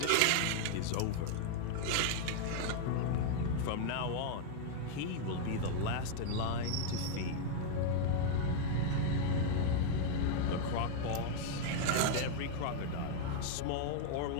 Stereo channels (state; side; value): different; both; correlation 0.00